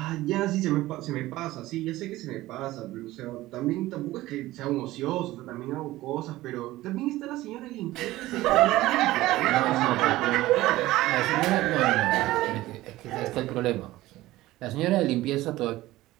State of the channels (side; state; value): left; quieter; 17.0 dB